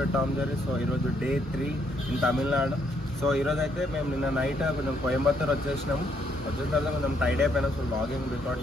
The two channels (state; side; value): normal; both; correlation 0.72